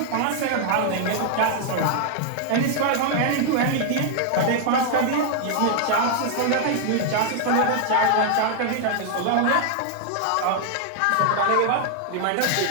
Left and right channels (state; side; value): different; both; correlation 0.00